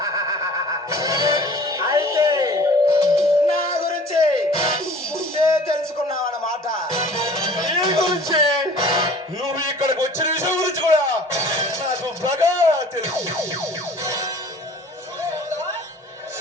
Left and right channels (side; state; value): both; normal; correlation 0.48